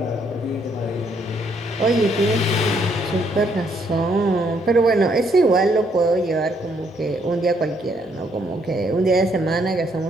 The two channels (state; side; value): normal; both; correlation 0.71